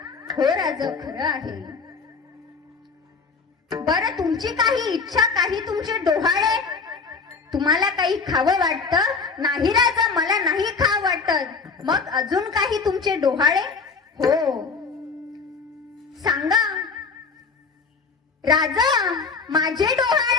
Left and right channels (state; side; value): quieter; right; 4.8 dB